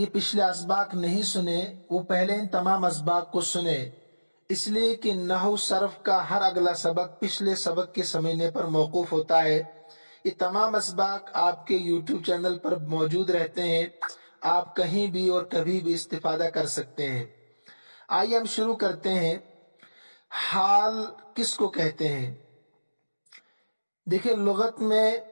پچھلے اسباق نہیں سنے وہ پہلے ان تمام اسباق کو سنے، اس لیے کہ نحو صرف کا ہر اگلا سبق پچھلے سبق کے سمجھنے پر موقوف ہوتا ہے۔ یہ تمام اسباق آپ کے یوٹیوب چینل پر موجود رہتے ہیں، آپ کہیں بھی اور کبھی بھی استفادہ کر سکتے ہیں۔ آئیے ہم شروع کرتے ہیں۔ حال کس کو کہتے ہیں؟ دیکھیں، لغت میں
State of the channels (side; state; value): both; inverted; correlation -1.00